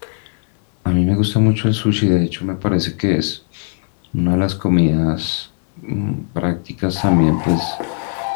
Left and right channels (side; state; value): right; silent; 55 dB below the other